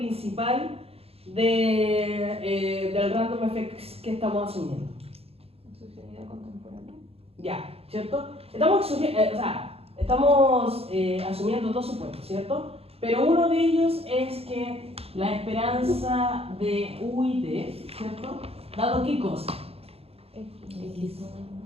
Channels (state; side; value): late; left; 0.29 ms